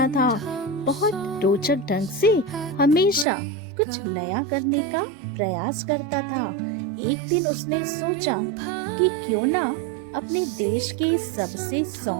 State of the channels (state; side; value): drops out; left; at 3.2 s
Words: था। बहुत रोचक ढंग से हमेशा कुछ नया करने का प्रयास करता था। एक दिन उसने सोचा कि क्यों ना अपने देश के सबसे